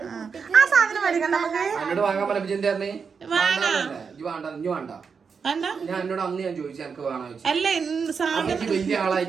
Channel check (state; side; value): quieter; left; 5.8 dB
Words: ആ സാധനം മേടിക്കണ്ട നമുക്ക്. അല്ല